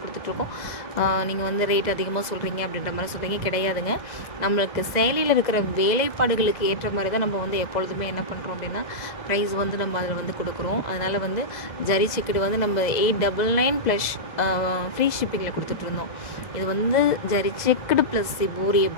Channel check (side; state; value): right; late; 2.0 ms